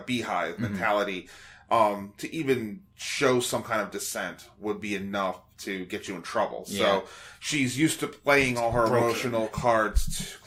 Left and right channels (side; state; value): both; identical; correlation 1.00